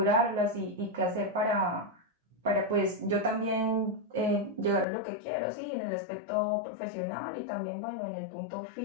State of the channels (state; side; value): drops out; right; at 4.9 s